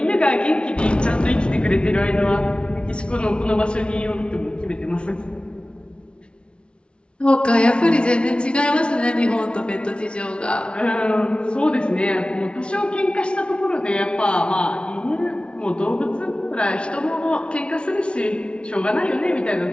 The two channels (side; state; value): right; late; 0.057 ms